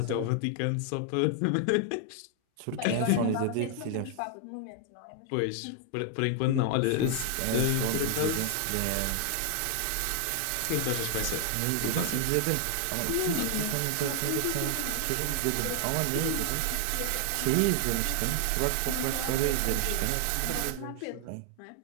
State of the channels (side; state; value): both; different; correlation 0.00